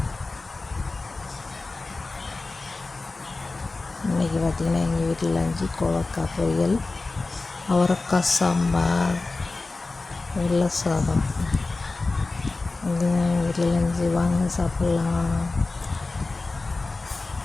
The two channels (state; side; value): quieter; right; 3.5 dB